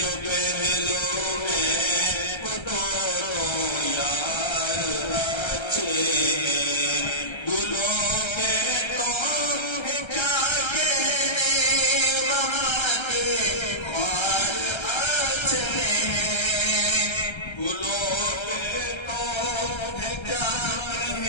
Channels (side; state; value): right; late; 1.3 ms